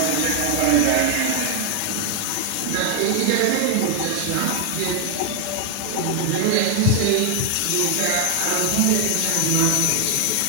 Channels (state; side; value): different; both; correlation 0.00